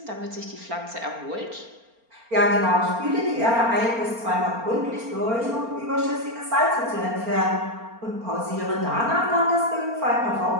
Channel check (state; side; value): late; left; 4.4 ms